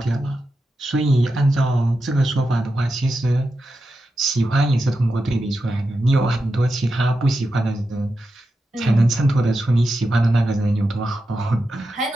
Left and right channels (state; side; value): normal; both; correlation 0.89